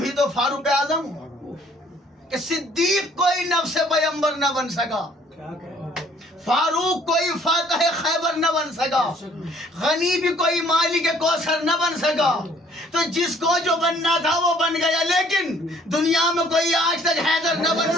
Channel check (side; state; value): both; normal; correlation 0.59